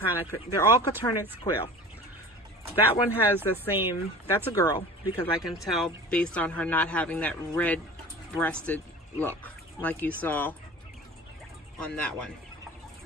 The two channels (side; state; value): both; normal; correlation 0.39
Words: of, they're all Coturnix quail. That one has the same, that's a girl, because I can tell based on her not having that red breasted look like you saw on that one.